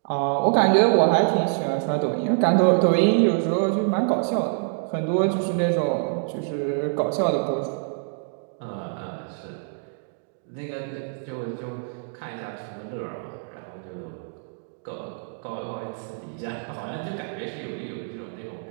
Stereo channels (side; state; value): left; silent; digital silence